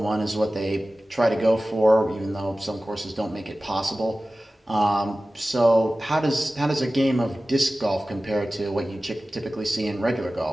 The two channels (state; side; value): normal; both; correlation 0.96